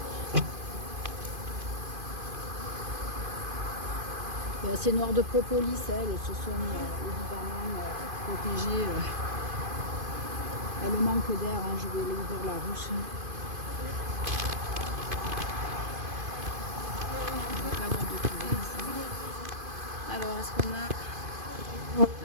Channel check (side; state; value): left; late; 2.5 ms